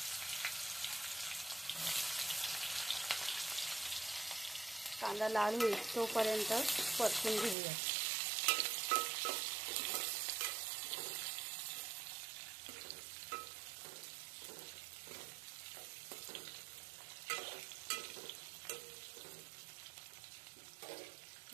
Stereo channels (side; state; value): left; drops out; at 7.6 s